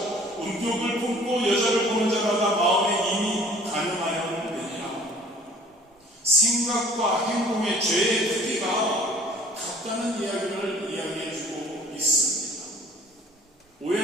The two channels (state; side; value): normal; both; correlation 0.51